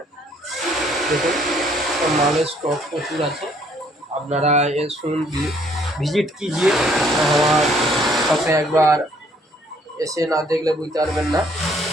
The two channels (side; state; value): both; normal; correlation 0.64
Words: দেখুন মালের স্টক প্রচুর আছে। আপনারা শুনুন, ভিজিট कीजिए। আমার সাথে একবার এসে না দেখলে বুঝতে পারবেন না।